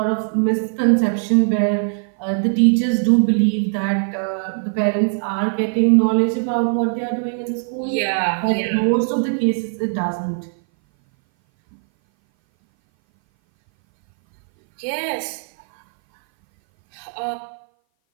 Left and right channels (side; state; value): left; silent; 59 dB below the other